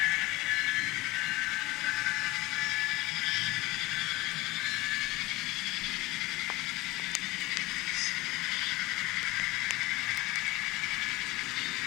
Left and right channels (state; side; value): quieter; right; 20.4 dB